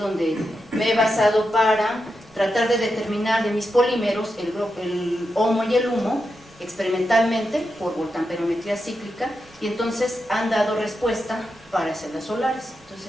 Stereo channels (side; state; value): both; normal; correlation 0.87